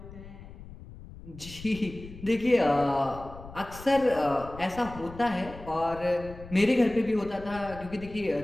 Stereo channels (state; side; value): noise; left; rumble, 16 dB below the sound